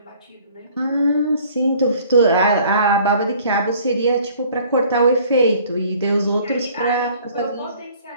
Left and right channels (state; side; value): inverted; both; correlation -0.54